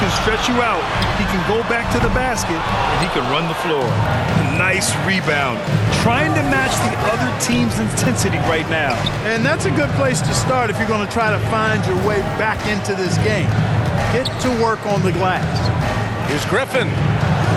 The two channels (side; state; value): both; identical; correlation 1.00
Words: stretch you out. He can go back to the basket, and he can run the floor. Nice rebound. Trying to match the other team's intensity right now. And that's a good place to start if you're going to try to find your way back into this game. Get to work on the glass. Here's Griffin.